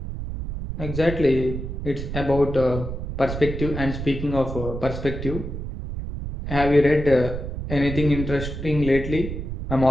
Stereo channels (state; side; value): noise; right; rumble, 6 dB below the sound